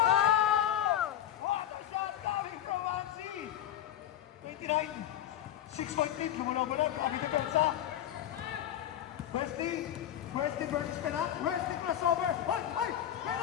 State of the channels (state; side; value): quieter; right; 11.5 dB